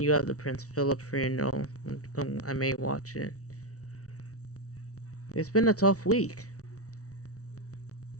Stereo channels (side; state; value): right; late; 0.66 ms